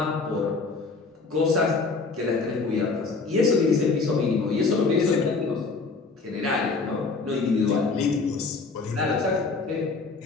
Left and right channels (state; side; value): quieter; right; 4.1 dB